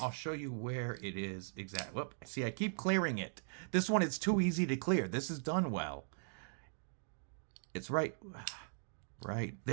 show you where it is exactly. Whoop, see, I keep clearing it. This one is too easy to clear. This is done well. It's right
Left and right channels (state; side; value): silent; left; digital silence